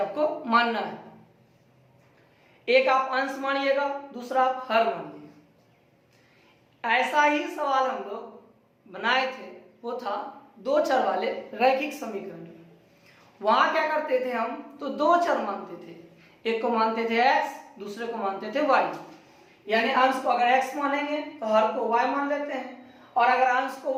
मानना है। एक आप अंश मानिएगा, दूसरा आप हर मानिएगा। ऐसा ही सवाल हम लोग बनाए थे, वो था दो चर वाले रैखिक समीकरण। वहां क्या करते थे हम, तो दो चर मानते थे, एक को मानते थे x, दूसरे को मानते थे y। यानी अंश को अगर x मानेंगे तो हर को y मान लेते हैं, और अगर अंश को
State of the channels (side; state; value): both; identical; correlation 1.00